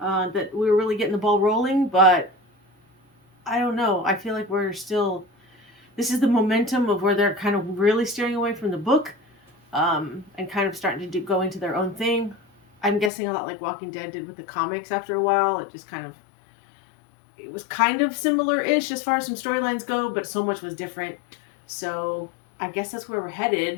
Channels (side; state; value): right; drops out; at 13.1 s